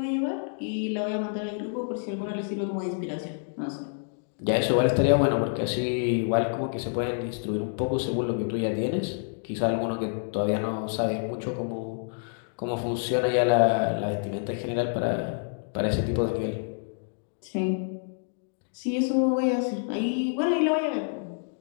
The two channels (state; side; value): silent; right; digital silence